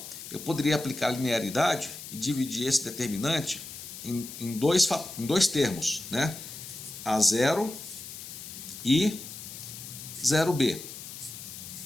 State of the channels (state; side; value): noise; left; hiss, 11 dB below the sound